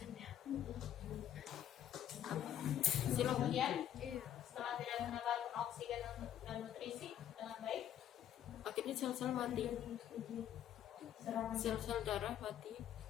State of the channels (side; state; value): right; quieter; 10.7 dB